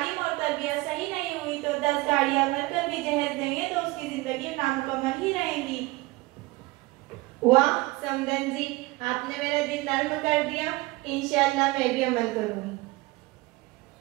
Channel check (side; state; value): left; quieter; 21.3 dB